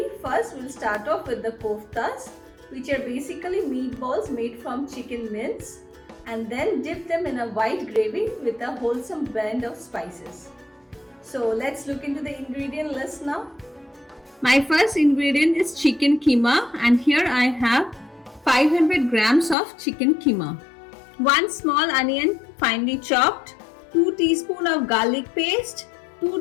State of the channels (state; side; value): drops out; right; at 19.6 s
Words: first we'll start off with the koftas, which are basically meatballs made from chicken mince, and then dip them in a white gravy with a wholesome blend of spices. So let's look into the ingredient list now. My first ingredient is chicken keema, and here I have 500 grams of chicken keema. 1 small onion finely chopped, 2 teaspoons of garlic paste,